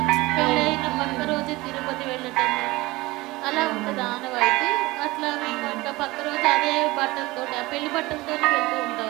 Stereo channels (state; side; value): quieter; left; 20.7 dB